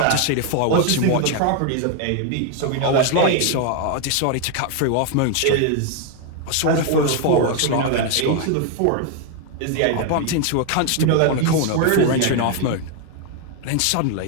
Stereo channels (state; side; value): different; both; correlation 0.01